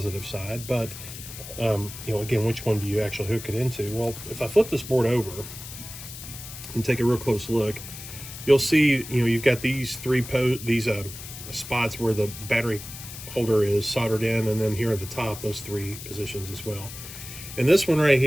side. But, you know, again, which one do you actually hook it into? Well, if I flip this board over and take a real close look, you'll see, you know, you've got these spots where the battery holder is soldered in, and then here at the top, those 3 positions as well. And this one right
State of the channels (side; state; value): left; noise; hiss, 12 dB below the sound